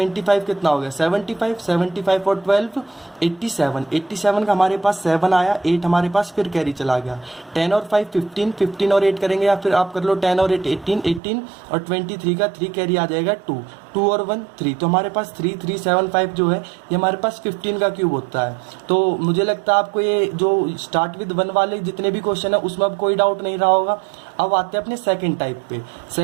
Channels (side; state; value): left; drops out; at 11.2 s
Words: कितना हो गया, 75, 75 और 12 87, 87 का हमारे पास 7 आया, 8 हमारे पास फिर कैरी चला गया। 10 और 5 15, 15 और 8 करेंगे, या फिर आप कर लो 10 और 8 18, 18 और 23 का 3 कैरी आ जाएगा 2, 2 और 1 3। तो हमारे पास 3375 जो है ये हमारे पास 15 का क्यूब होता है। तो मुझे लगता है आपको ये जो स्टार्ट विद 1 वाले जितने भी क्वेश्चन है उसमें अब कोई डाउट नहीं रहा होगा। अब आते हैं अपने सेकंड टाइप पे।